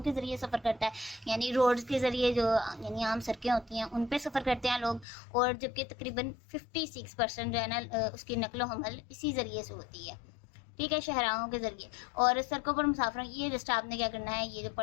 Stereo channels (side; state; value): right; drops out; at 5.1 s